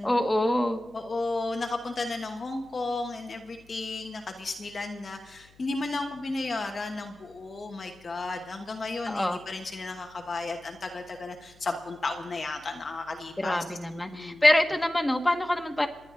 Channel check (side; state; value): left; noise; hum, 27 dB below the sound